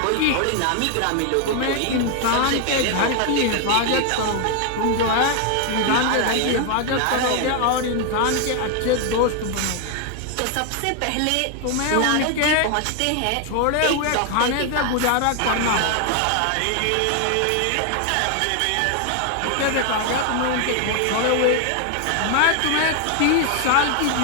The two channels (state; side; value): different; both; correlation 0.00